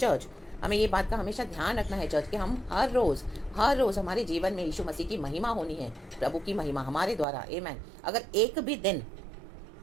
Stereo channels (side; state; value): left; drops out; at 7.2 s